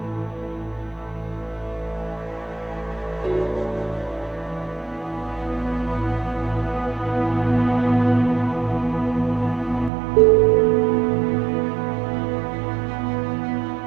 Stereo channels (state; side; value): drops out; left; at 9.9 s